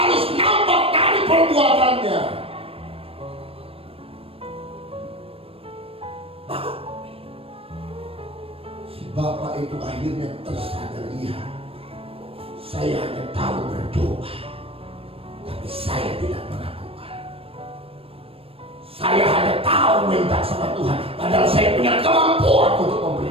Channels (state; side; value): late; left; 0.28 ms